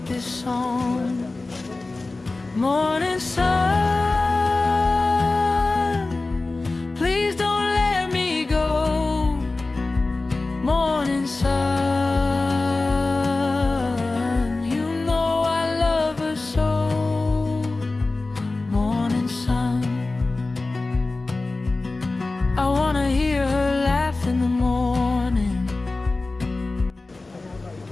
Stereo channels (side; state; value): right; quieter; 3.3 dB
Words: this song. Morning sun, please don't let me go. Morning sun, you know I love her so. Morning sun, I wanna hear her laugh in the morning